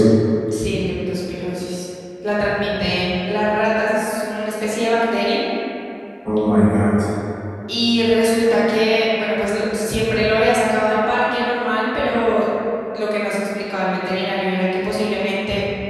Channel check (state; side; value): identical; both; correlation 1.00